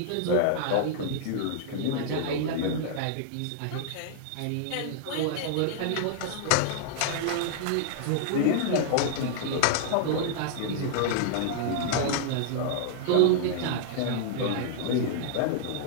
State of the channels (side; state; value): both; different; correlation -0.01